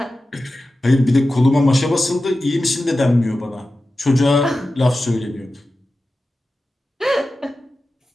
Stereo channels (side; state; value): both; normal; correlation 0.94